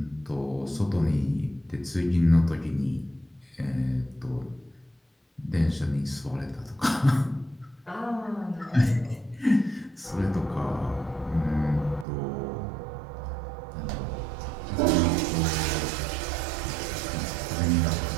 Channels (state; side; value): drops out; left; at 12.1 s